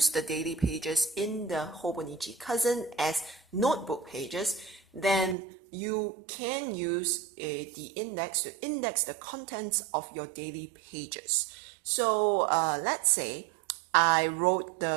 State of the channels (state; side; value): drops out; left; at 5.4 s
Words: the daily pages in the Hobonichi Cousin as notebook pages, then you can use the index to index the contents of your daily pages. So let's say I wrote